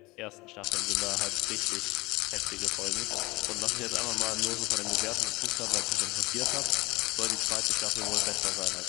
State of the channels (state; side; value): quieter; right; 22.4 dB